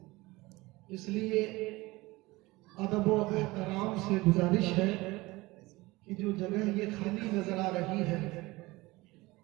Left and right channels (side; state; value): left; quieter; 21.2 dB